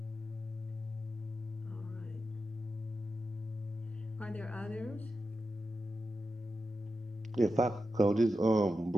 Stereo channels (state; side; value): normal; both; correlation 0.90